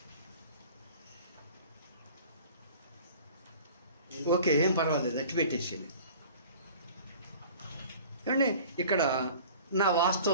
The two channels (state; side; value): inverted; both; correlation -0.45